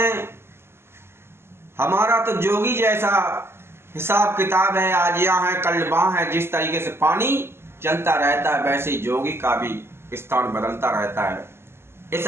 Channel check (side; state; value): left; late; 0.12 ms